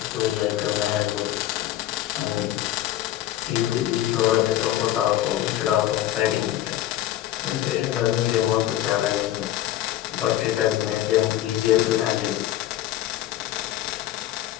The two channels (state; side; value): quieter; right; 13.4 dB